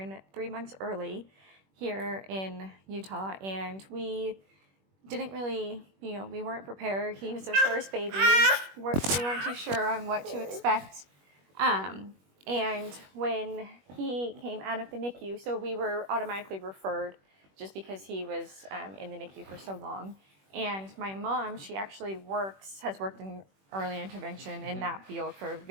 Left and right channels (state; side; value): late; left; 21 ms